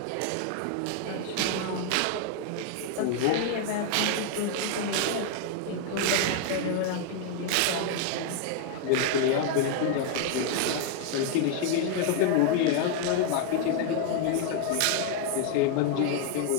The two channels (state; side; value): different; both; correlation 0.00